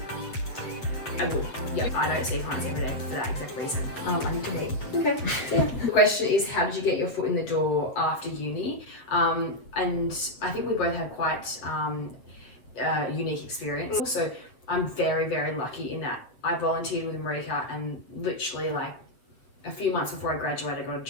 I would. Yeah. I don't see clients every day for that exact reason. I need to wait. Okay. Yeah. The question is, how did you get your foot in the door after uni? And I think we both have quite unique experience. Also, I'm very, very lucky in that I volunteered with Marika, and literally like a few months before I graduated, I got a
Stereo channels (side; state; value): right; late; 8.1 ms